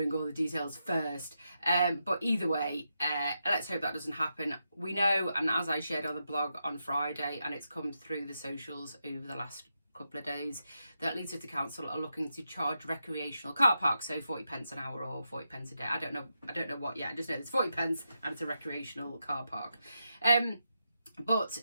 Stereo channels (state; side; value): inverted; both; correlation -0.86